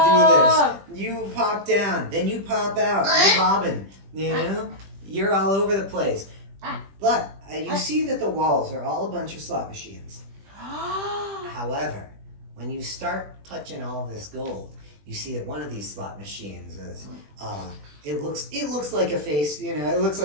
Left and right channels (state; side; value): late; left; 20 ms